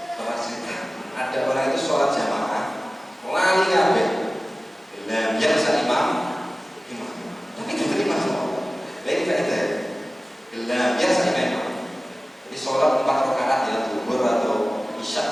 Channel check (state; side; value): normal; both; correlation 0.97